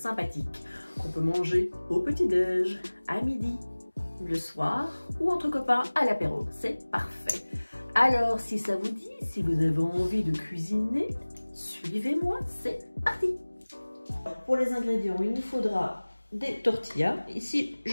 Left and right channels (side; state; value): both; inverted; correlation -1.00